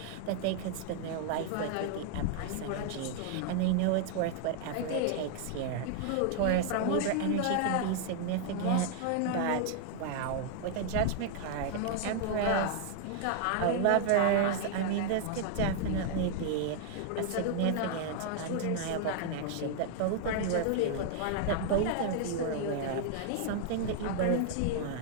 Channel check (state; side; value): different; both; correlation 0.00